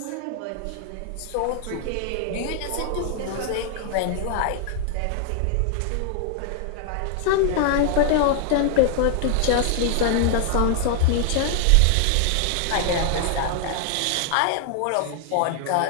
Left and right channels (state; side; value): different; both; correlation 0.00